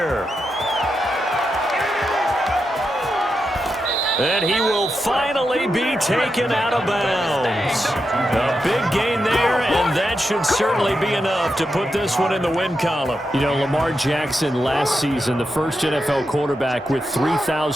And he will finally be taken out of bounds. A big gain there, and that should certainly be enough to put this one in the win column. You know, Lamar Jackson last season, the first NFL quarterback with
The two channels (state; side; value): normal; both; correlation 0.87